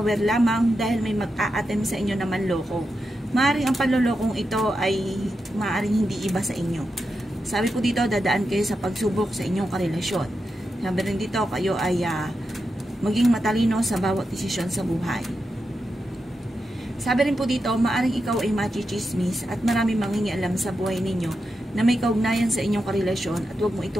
lamang dahil may mag-a-attempt sa inyo na manloko. Maaring ang panlolokong ito ay maaring hindi iba sa inyo. Sabi po dito, dadaan kayo sa pagsubok sa inyong karelasyon. Sabi rin dito, kayo ay maging matalino sa bawat desisyon sa buhay. Sabi rin po dito, maaring ikaw ay machichismis at marami mangingialam sa buhay ninyo na may kaugnayan sa inyong karelasyon at huwag mo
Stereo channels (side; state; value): both; normal; correlation 0.87